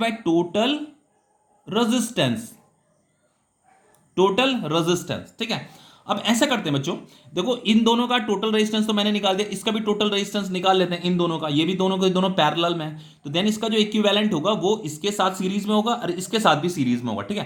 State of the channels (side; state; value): both; identical; correlation 1.00